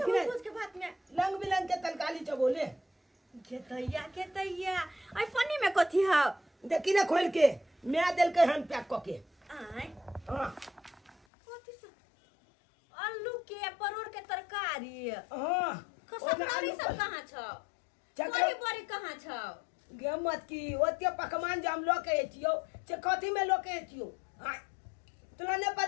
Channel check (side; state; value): right; drops out; at 11.2 s